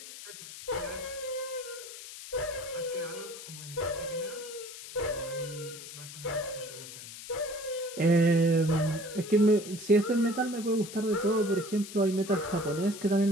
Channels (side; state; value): left; noise; hiss, 13 dB below the sound